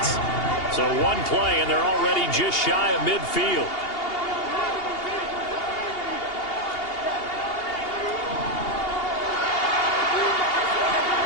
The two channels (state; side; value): late; right; 2.8 ms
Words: So one play, and they're already just shy of midfield.